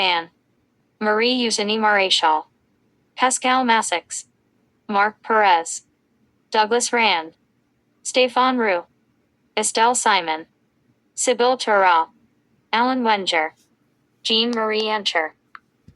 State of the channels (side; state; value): both; identical; correlation 1.00